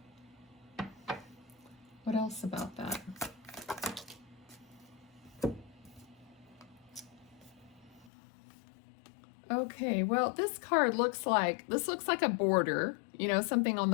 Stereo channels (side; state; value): right; drops out; at 8.1 s